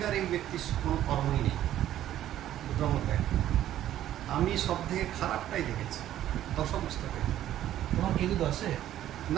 এই ব্যক্তির কোনো কর্মই নেই, দুটোর মধ্যে একটা। আমি সব থেকে খারাপটাই দেখেছি দশমস্ত কেতু। তোমার কেতু দশে?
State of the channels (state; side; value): quieter; left; 12.3 dB